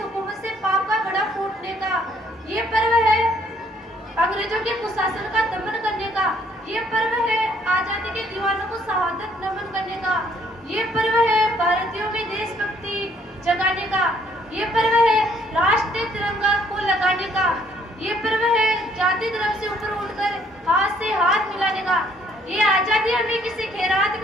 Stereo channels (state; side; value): normal; both; correlation 0.65